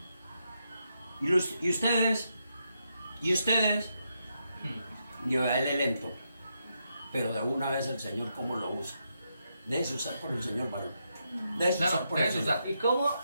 ¿Y ustedes? Yo a él lento, pero de una vez el Señor cómo lo usa. Déjese usar por el Señor, varón. Déjese Claro, usar por el déjese Señor. usar. ¿Y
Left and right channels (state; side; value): inverted; both; correlation -0.82